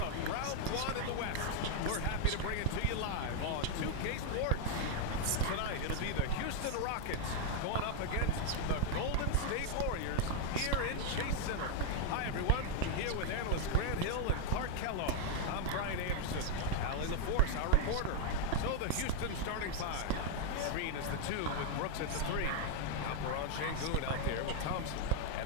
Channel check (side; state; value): both; different; correlation 0.00